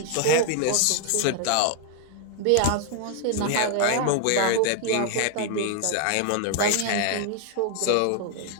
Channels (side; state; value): both; different; correlation 0.00